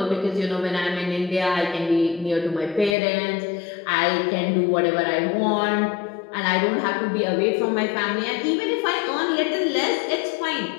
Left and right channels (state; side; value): drops out; right; at 3.0 s